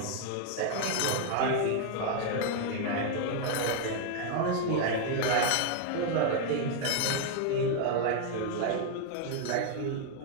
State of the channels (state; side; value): different; both; correlation 0.00